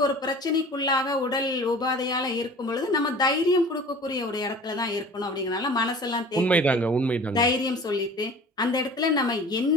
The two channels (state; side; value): normal; both; correlation 0.43